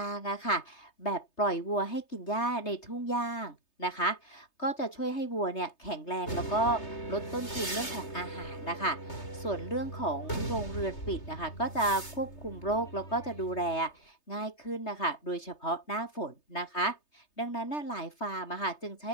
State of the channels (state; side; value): late; right; 3.3 ms